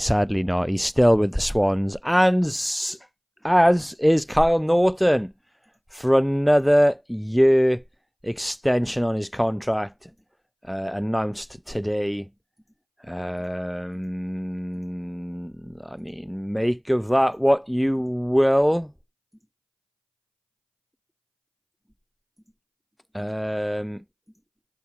Sadly not. He's still with the Swans. And as is Kyle Norton for another year extension on his contract announced today. I mean, make of that what you will. I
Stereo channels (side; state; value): both; identical; correlation 1.00